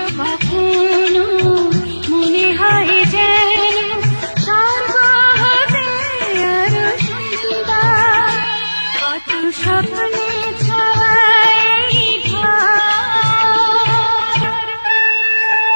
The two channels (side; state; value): both; inverted; correlation -1.00